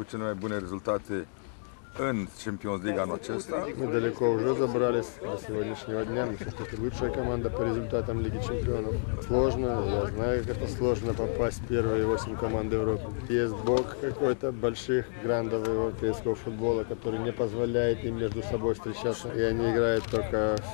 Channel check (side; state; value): right; silent; 58 dB below the other